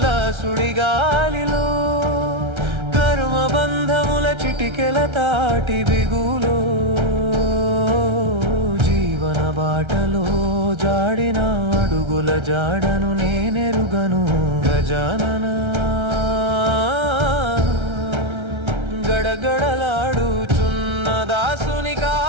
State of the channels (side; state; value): left; late; 1.3 ms